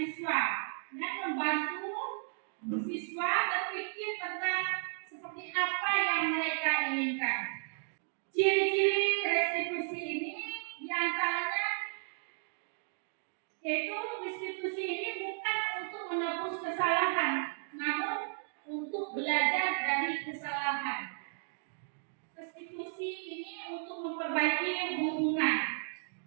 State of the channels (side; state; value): left; silent; digital silence